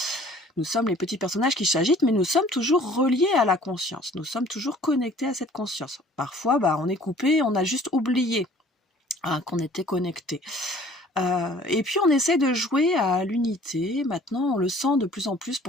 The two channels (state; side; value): normal; both; correlation 0.52